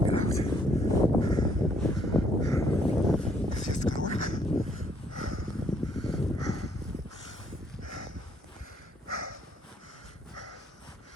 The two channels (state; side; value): normal; both; correlation 0.68